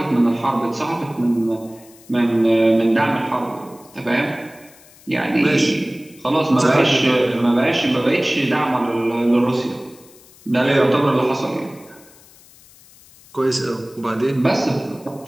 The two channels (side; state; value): left; noise; hiss, 25 dB below the sound